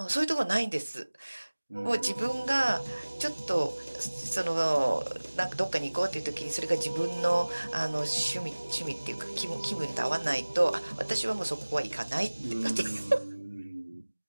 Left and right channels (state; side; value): inverted; both; correlation -1.00